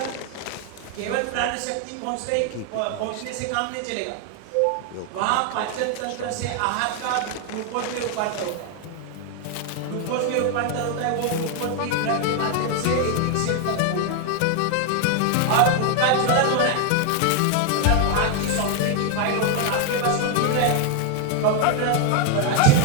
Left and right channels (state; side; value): different; both; correlation 0.01